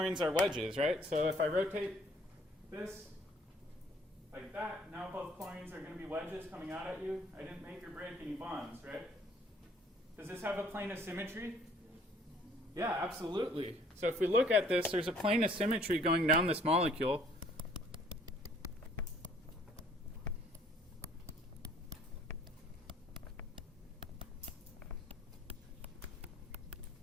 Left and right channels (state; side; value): normal; both; correlation 0.59